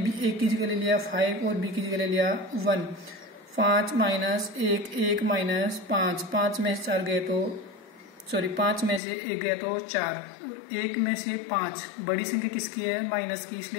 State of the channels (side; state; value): right; drops out; at 9.0 s